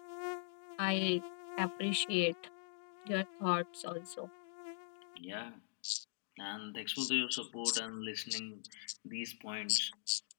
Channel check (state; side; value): silent; right; digital silence